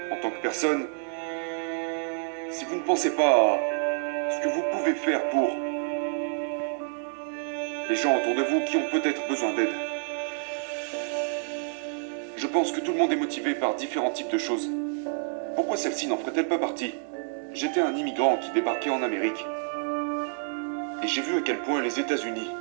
En tant que personne, si vous ne pensez pas à ce que vous pouvez faire pour les gens autour de vous qui ont peut-être besoin d'aide. Je pense que tout le monde est motivé par différents types de choses. Pourquoi celle-ci n'en ferait-elle pas partie? J'étais un immigrant qui débarquait en Amérique. Et j'ai vu à quel point les États-Unis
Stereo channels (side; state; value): left; silent; digital silence